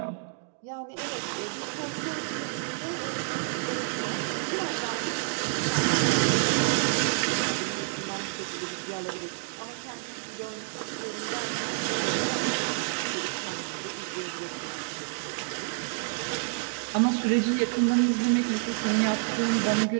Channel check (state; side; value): silent; left; 59 dB below the other